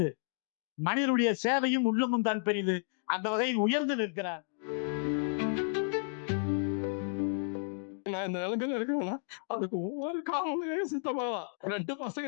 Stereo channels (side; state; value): right; silent; digital silence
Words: மனிதனுடைய சேவையும் உள்ளமும் தான் பெரிது. அந்த வகையில் உயர்ந்து நிற்கிறார். நான் இந்த நிலைமையில இருக்கணும்னா அதுக்கு ஒவ்வொரு காரணம் சித்தப்பாவா. 2